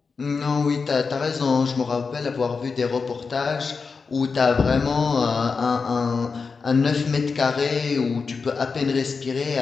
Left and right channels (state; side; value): quieter; right; 4.9 dB